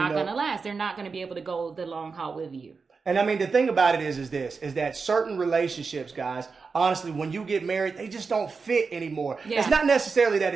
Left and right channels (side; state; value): left; quieter; 4.8 dB